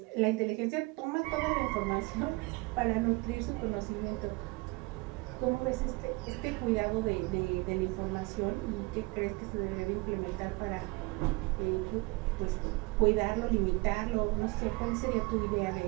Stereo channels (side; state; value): left; quieter; 25.4 dB